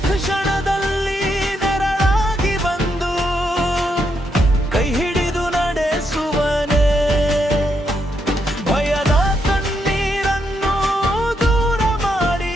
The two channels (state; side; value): normal; both; correlation 0.79